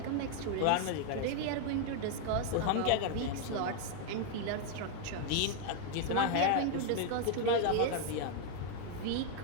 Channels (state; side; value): different; both; correlation 0.00